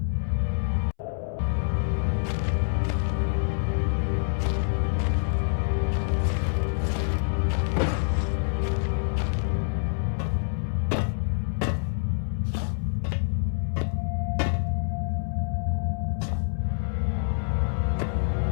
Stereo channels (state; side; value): silent; right; 61 dB below the other